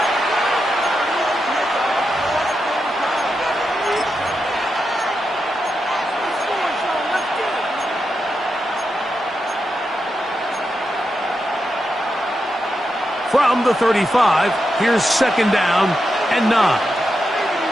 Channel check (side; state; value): both; normal; correlation 0.87